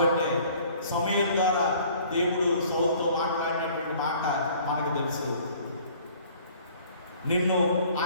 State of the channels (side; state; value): both; inverted; correlation -0.53